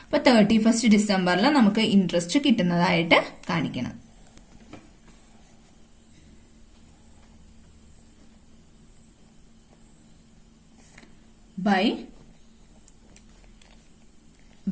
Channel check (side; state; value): both; identical; correlation 1.00